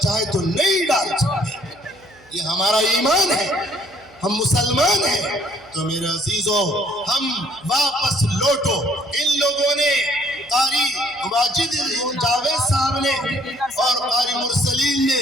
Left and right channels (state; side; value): noise; right; hum, 29 dB below the sound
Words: تو نہیں ڈال سکتے۔ یہ ہمارا ایمان ہے، ہم مسلمان ہیں۔ تو میرے عزیزو، ہم واپس لوٹو۔ ان لوگوں نے، قاری واجد جاوید صاحب نے اور قاری مرسلین نے،